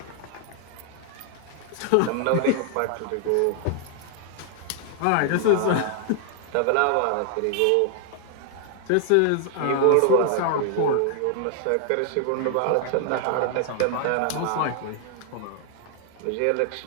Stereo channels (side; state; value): both; different; correlation 0.00